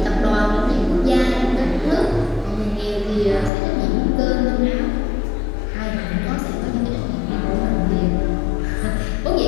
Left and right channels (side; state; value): right; drops out; at 3.5 s